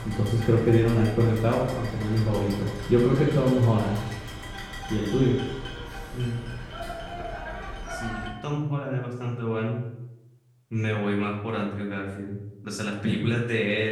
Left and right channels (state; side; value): identical; both; correlation 1.00